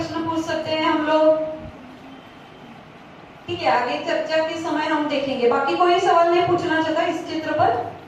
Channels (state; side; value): identical; both; correlation 1.00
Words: पूछ सकते हैं हम लोग? ठीक है, आगे चर्चा के समय हम देखेंगे। बाकी कोई सवाल नहीं पूछना चाहता इस चित्र पर?